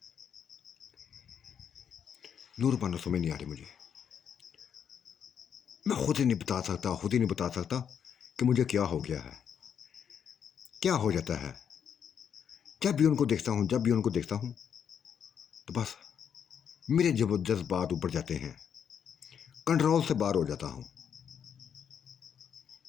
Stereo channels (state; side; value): quieter; right; 8.0 dB